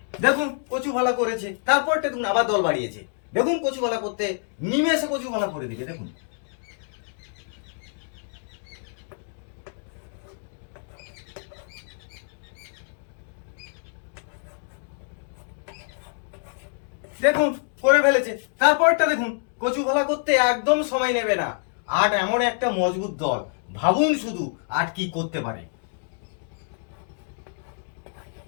দেখুন কচু ভালা করেছে, তারপরটা দেখুন আবার দল বাড়িয়েছে। দেখুন কচু ভালা করতে নিমেষে কচু ভালা করে দিবে। দেখুন দেখুন করে ফেলেছে। তারপরটা দেখুন কচু ভালা করতে একদম সময় নেবে না। 8 এমন একটা মজবুত দল, ভাবুন শুধু 8 কি করতে পারে।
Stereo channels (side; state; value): right; silent; digital silence